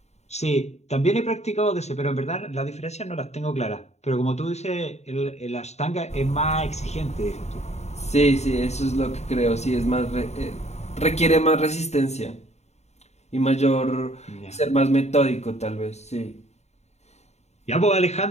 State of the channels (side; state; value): right; late; 0.32 ms